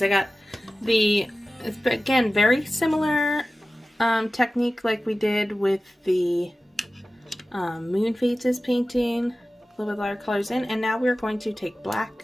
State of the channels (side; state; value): both; normal; correlation 0.96